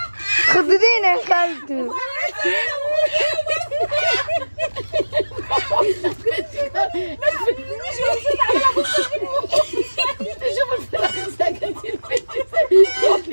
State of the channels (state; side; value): inverted; both; correlation -1.00